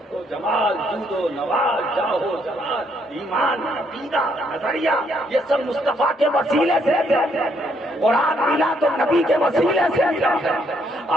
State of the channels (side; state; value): both; normal; correlation 0.71